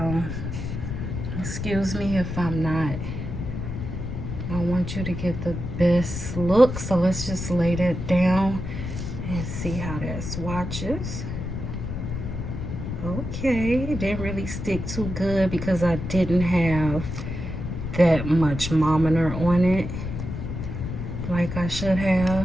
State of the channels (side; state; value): left; noise; rumble, 5 dB below the sound